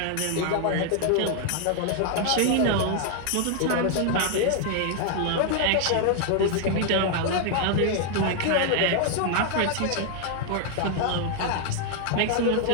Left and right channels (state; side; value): different; both; correlation 0.00